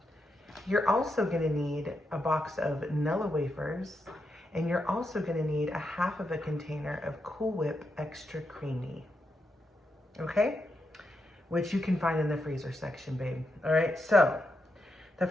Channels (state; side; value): normal; both; correlation 0.84